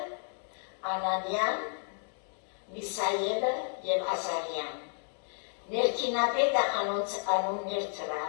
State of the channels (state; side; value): silent; right; digital silence